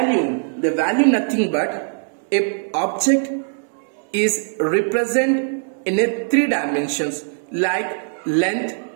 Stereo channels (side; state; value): left; silent; digital silence